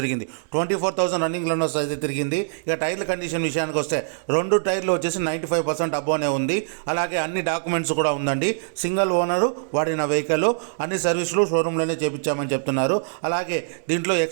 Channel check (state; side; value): silent; left; digital silence